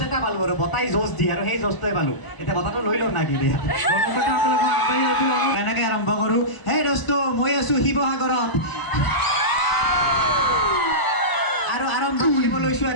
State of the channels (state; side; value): late; right; 1.0 ms